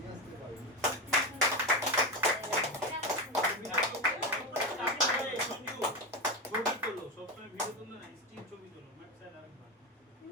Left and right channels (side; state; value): both; normal; correlation 0.15